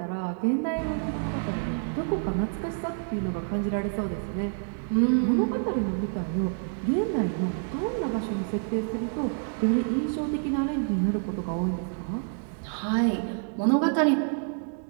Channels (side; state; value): left; silent; 59 dB below the other